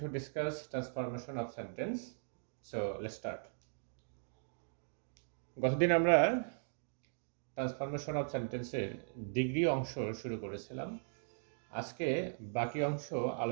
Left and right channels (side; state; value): left; silent; digital silence